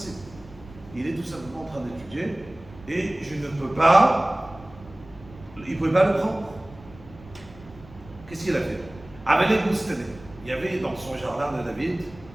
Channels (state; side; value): noise; right; rumble, 20 dB below the sound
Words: Il est tout simplement en train d'étudier, et je ne peux pas, il ne pouvait pas le prendre. Qu'est-ce qu'il a fait? Il y avait dans son jardin de David,